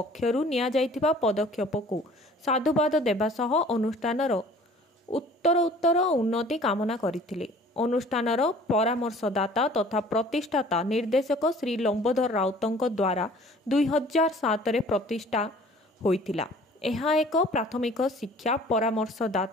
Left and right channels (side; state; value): both; normal; correlation 0.50